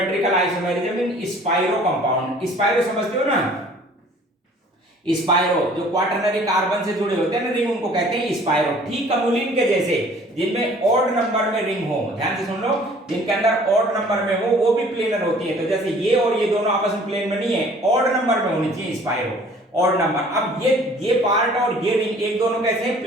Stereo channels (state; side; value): normal; both; correlation 0.52